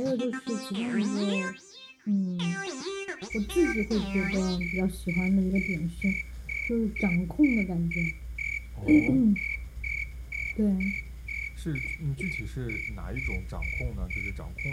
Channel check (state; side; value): identical; both; correlation 1.00